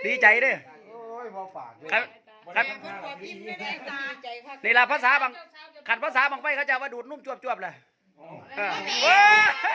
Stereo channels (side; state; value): both; identical; correlation 1.00